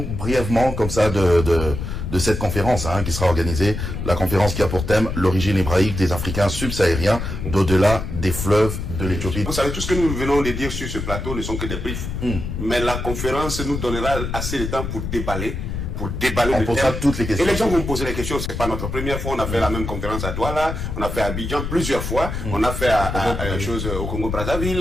brièvement comme ça de cette conférence qui sera organisée, la conférence qui a pour thème l'origine hébraïque des Africains subsahariens d'au-delà des fleuves de l'Éthiopie. Vous savez, tout ce que nous venons de dire sur ce plateau ne sont que des briefs, mais la conférence nous donnera assez de temps pour déballer on posera toutes les questions. Et les gens vont me poser les questions. C'est pas notre première fois. On a fait la même conférence à Douala, on a fait à Abidjan plusieurs fois, on a fait chose au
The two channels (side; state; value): left; noise; rumble, 5 dB below the sound